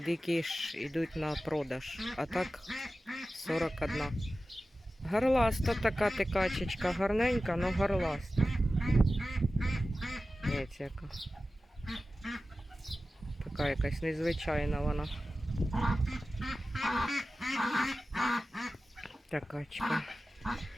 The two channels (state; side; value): normal; both; correlation 0.95